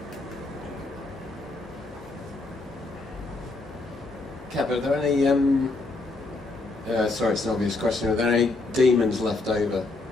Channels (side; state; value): right; quieter; 3.3 dB